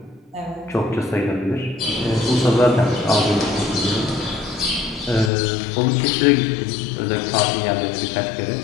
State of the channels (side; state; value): right; drops out; at 5.3 s